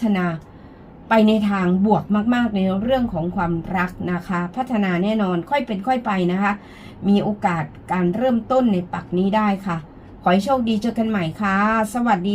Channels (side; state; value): both; identical; correlation 1.00